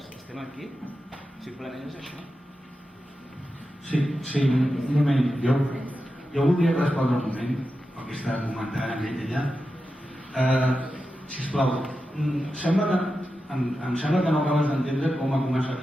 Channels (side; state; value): both; normal; correlation 0.91